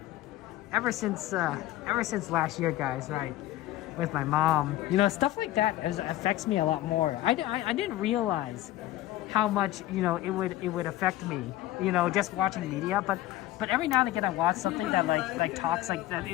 ever since last year, guys, right, with my mom, you know, stuff like that affects me a lot more. I didn't realize how much, you know, it would affect me, you know, just watching media, but every now and again I watch something that like talks like that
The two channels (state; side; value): quieter; right; 15.2 dB